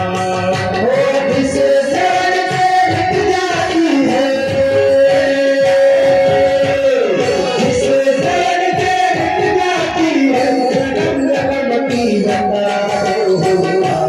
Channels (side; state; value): both; identical; correlation 1.00